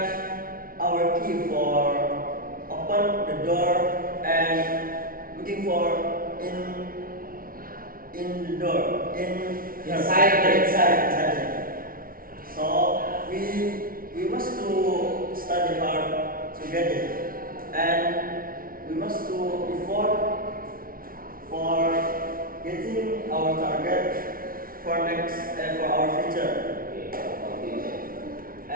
our key for open the door and looking for in the door inside. So we must to study hard to get it, and we must to effort for getting our target for next and for our future.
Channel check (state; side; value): late; left; 0.42 ms